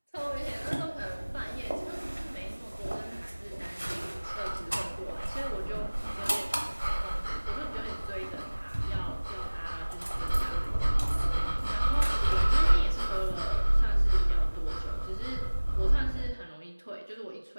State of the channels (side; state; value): both; inverted; correlation -1.00